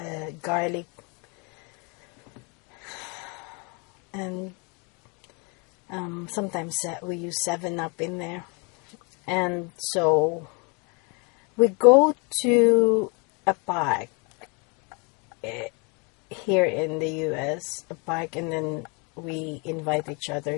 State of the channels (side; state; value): right; quieter; 32.5 dB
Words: garlic, and sometimes we use 7-Up in there. And so we go to a park here in the US, a park, and then we invite each